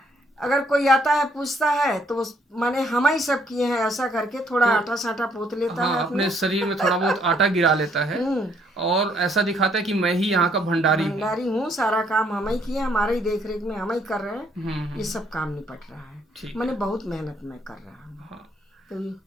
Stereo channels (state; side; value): normal; both; correlation 0.68